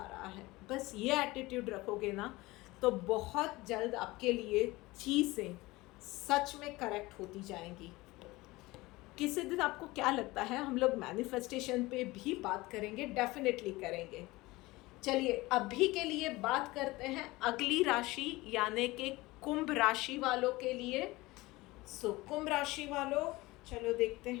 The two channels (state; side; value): quieter; right; 20.7 dB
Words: रहा है। बस ये एटीट्यूड रखोगे ना तो बहुत जल्द आपके लिए चीज़ें सच में करेक्ट होती जाएंगी। किसी दिन आपको क्या लगता है हम लोग मैनिफेस्टेशन पे भी बात करेंगे, डेफिनेटली करेंगे। चलिए अभी के लिए बात करते हैं अगली राशि यानी कि कुंभ राशि वालों के लिए। सो कुंभ राशि वालों, चलो देखते